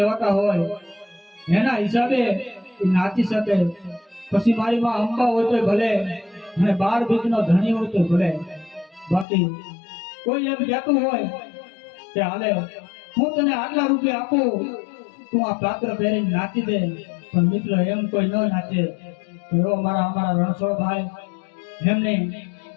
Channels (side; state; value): right; drops out; at 9.2 s